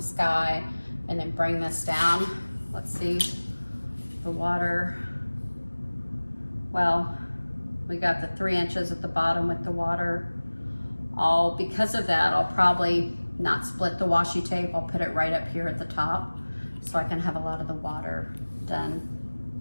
sky, and then bring this down. Let's see, the water. Well, we got the 3 inches at the bottom with the water. Because of that, I'll probably not split the washi tape. I'll put it right up here at the top so I can have a lot of the water done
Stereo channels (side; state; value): both; inverted; correlation -1.00